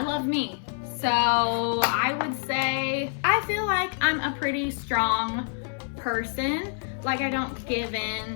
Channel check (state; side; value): silent; right; 60 dB below the other